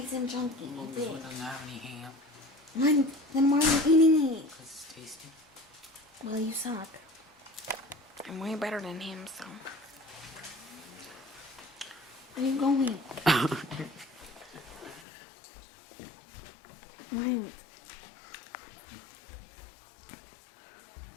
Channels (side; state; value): right; drops out; at 15.1 s